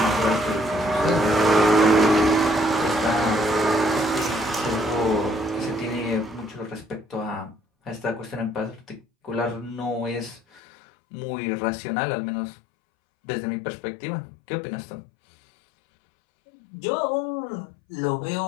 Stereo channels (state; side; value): drops out; right; at 10.6 s